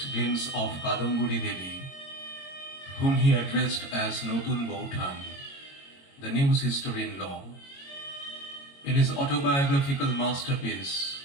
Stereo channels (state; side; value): late; right; 22 ms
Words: glimpse of Kadamburi Devi, whom he addressed as Notun Boutan, the new sister-in-law, in his autobiographical masterpiece,